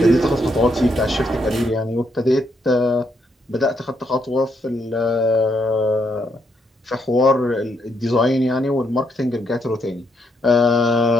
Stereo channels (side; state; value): both; normal; correlation 0.76